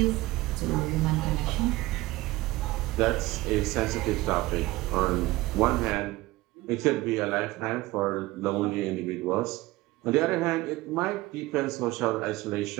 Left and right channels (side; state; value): left; quieter; 19.2 dB